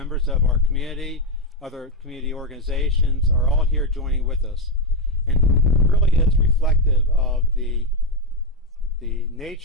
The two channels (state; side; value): normal; both; correlation 0.08